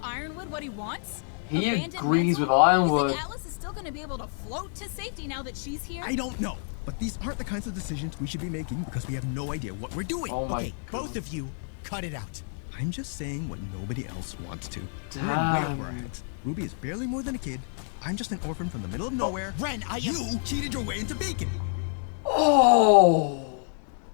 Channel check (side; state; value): right; silent; 59 dB below the other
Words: what he wants? He Abandon agrees Mental? with Ironwood. You think Atlas is still going to be able to float to safety now that she's here? I don't know. But these aren't the kinds of decisions we should be making because we have no idea what we're doing. Oh my okay, God. both of you, cut it out. I'm just saying what nobody else wants to. Damn. We're way over our heads. Ruby is barely more than a kid. I'm just an orphan from the middle of nowhere. Ren, You cheated your way into bacon. Oh,